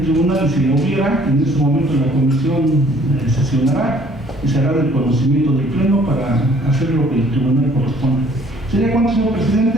tribunal, si la hubiera, en este momento la comisión sesionará y se hará del conocimiento del pleno para hacer lo que el tribunal corresponde. ¿Sería cuánto, señor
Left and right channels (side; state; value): both; normal; correlation 0.58